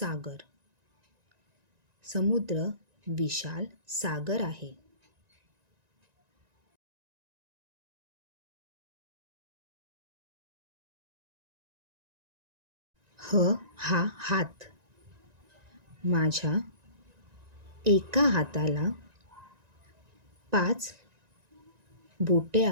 समुद्र विशाल सागर आहे. हा हात. माझ्या एका हाताला 5 बोटे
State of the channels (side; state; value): left; late; 1.9 ms